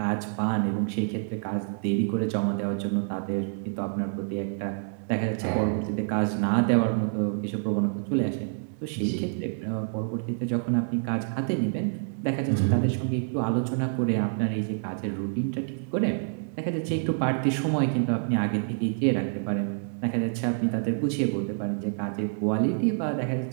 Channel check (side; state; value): left; silent; digital silence